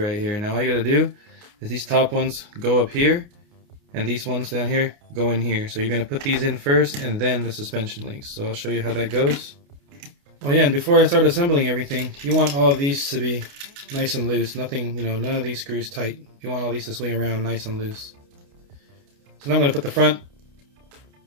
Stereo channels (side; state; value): left; late; 29 ms